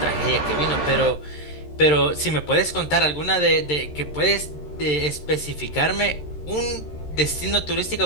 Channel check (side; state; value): right; late; 13 ms